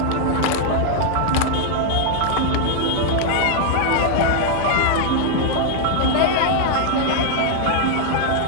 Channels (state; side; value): different; both; correlation 0.00